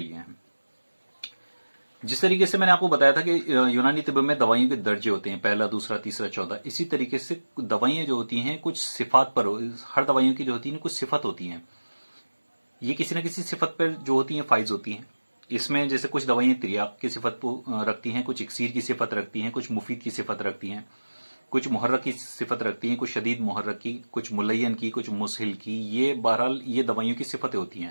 है। जिस तरीके से मैंने आपको बताया था कि यूनानी तिब में दवाइयों के दर्जे होते हैं, पहला, दूसरा, तीसरा, चौथा। इसी तरीके से दवाइयाँ जो होती हैं कुछ सिफात पर, हर दवाइयों की जो होती है कुछ सिफत होती हैं। ये किसी न किसी सिफत पर जो होती हैं फाइज होती हैं। इसमें जैसे कुछ दवाइयाँ तिर्याक की सिफत को रखती हैं, कुछ इक्सीर की सिफत रखती हैं, कुछ मुफीद की सिफत रखती हैं, कुछ मुहर्रक की सिफत रखती हैं, कुछ शदीद मुहर्रक की, कुछ मुलयन की, कुछ मुसहिल की। ये बहरहाल ये दवाइयों की सिफतें होती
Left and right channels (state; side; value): inverted; both; correlation -1.00